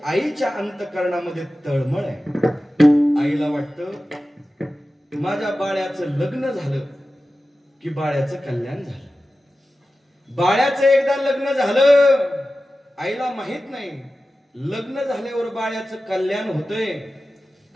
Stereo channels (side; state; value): both; normal; correlation 0.94